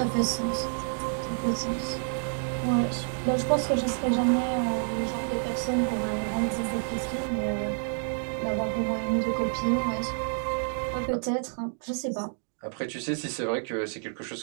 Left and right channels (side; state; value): left; silent; 59 dB below the other